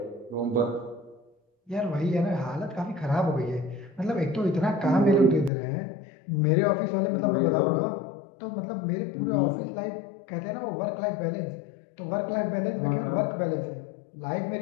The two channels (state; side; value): drops out; right; at 5.5 s